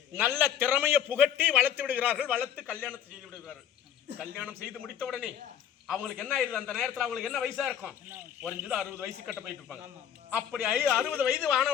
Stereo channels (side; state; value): right; quieter; 9.6 dB